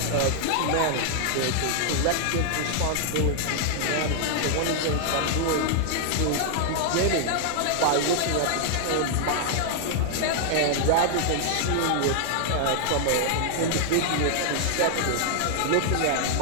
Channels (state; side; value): different; both; correlation 0.00